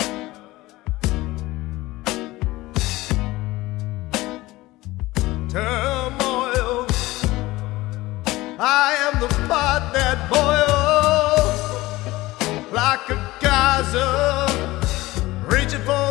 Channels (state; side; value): quieter; right; 18.9 dB